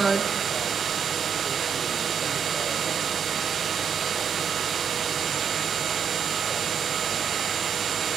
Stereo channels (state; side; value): quieter; left; 7.2 dB